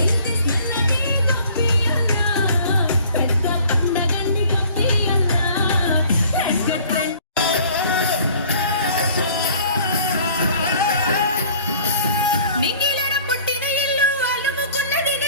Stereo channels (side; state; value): both; inverted; correlation -0.52